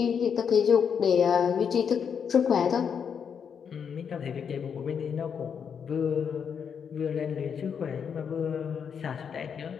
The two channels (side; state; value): right; quieter; 7.1 dB